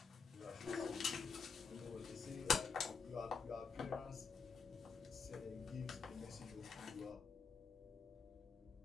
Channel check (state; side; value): quieter; right; 5.3 dB